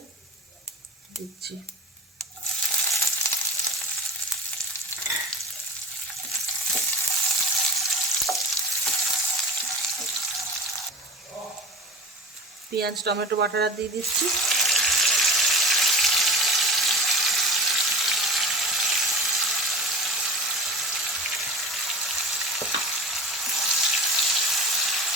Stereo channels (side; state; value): both; normal; correlation 0.35